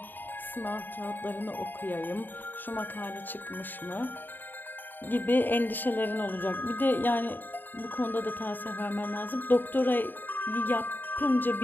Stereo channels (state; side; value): late; right; 0.091 ms